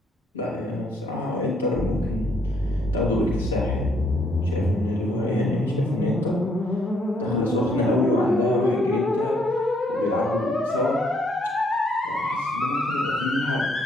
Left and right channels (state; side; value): normal; both; correlation 0.69